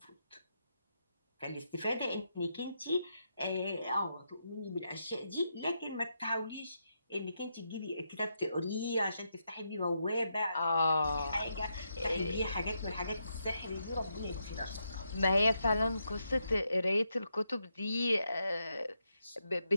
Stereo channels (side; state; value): both; inverted; correlation -0.82